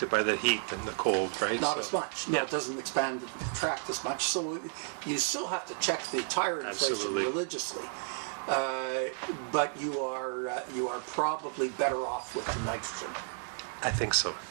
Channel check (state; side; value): silent; left; 56 dB below the other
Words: by the heat and the cold, right? Not as much. No, it doesn't expand and contract as much. So you still have to check the tire inflation religiously. But you are probably better off with the nitrogen. I think so.